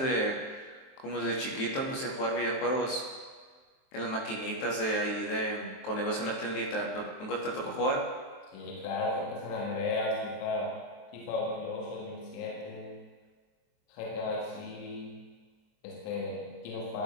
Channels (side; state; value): right; late; 23 ms